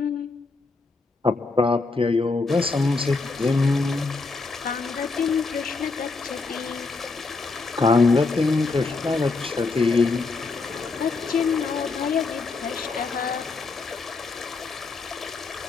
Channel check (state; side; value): quieter; right; 3.9 dB